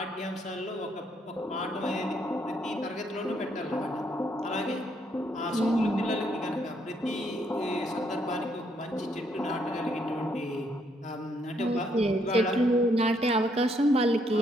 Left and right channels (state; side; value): normal; both; correlation 0.72